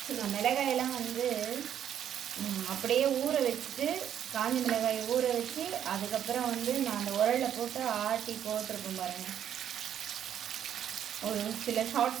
மிளகாயெல்லாம் வந்து அப்படியே ஊற வச்சுட்டு, காஞ்ச மிளகாயை ஊற வச்சு அதுக்கப்புறம் வந்து நான் அந்த உரலில் போட்டு ஆட்டி போட்டிருப்பேன் பாருங்கள். ஒரு சில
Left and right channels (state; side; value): quieter; left; 9.8 dB